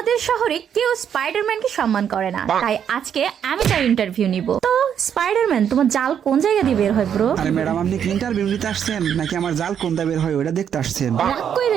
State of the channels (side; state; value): left; quieter; 8.6 dB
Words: শহরে কেউ স্পাইডারম্যানকে সম্মান করে না, তাই আজকে আমি তার ইন্টারভিউ নিব। তো স্পাইডারম্যান তোমার জাল কোন জায়গা দিয়ে বের হয় ব্রো? আরে ম্যাডাম আপনি কি ইন্টারভিউ নিতে আসছেন নাকি আমার জাল কোনটা বের হয় ওটা দেখতে আসছেন? রাগ